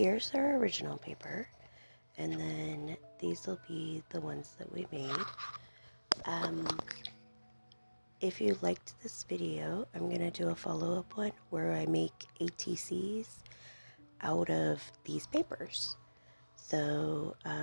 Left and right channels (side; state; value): both; inverted; correlation -1.00